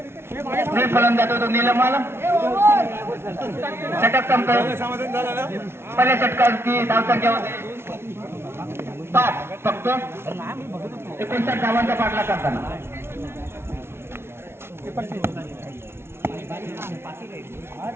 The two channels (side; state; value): left; late; 0.12 ms